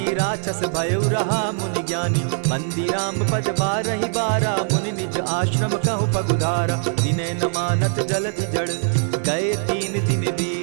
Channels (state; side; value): silent; left; digital silence